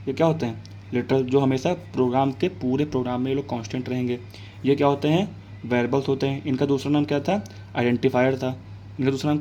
ये क्या होते हैं, लिटरल, जो हमेशा प्रोग्राम के पूरे प्रोग्राम में ये लोग कांस्टेंट रहेंगे। ये क्या होते हैं, वेरिएबल्स होते हैं। इनका दूसरा नाम क्या था, आइडेंटिफायर था। इनका दूसरा नाम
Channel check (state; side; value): identical; both; correlation 1.00